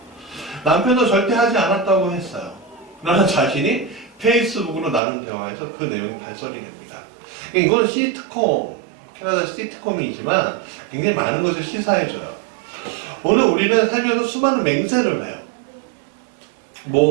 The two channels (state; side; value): drops out; left; at 5.0 s